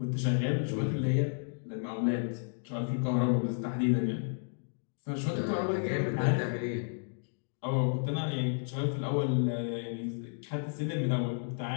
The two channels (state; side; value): silent; right; digital silence